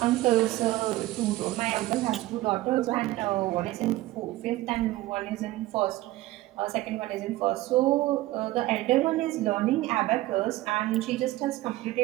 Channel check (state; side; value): quieter; left; 17.2 dB